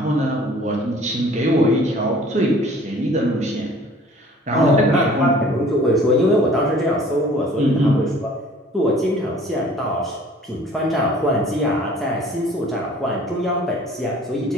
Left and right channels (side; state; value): both; normal; correlation 0.51